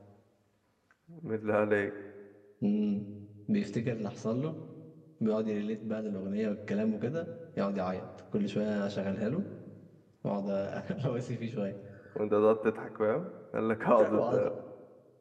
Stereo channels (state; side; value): identical; both; correlation 1.00